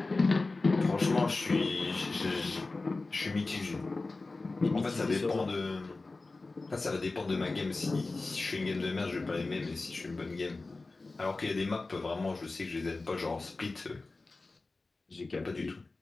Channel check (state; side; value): quieter; right; 3.5 dB